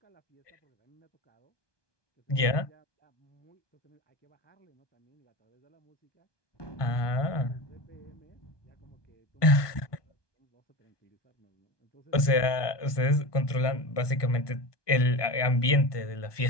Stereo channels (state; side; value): late; right; 1.2 ms